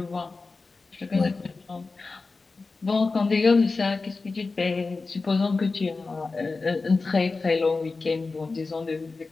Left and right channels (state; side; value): quieter; right; 3.9 dB